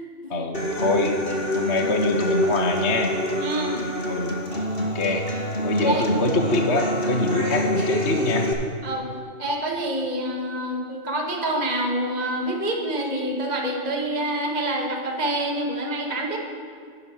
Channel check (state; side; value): late; right; 2.7 ms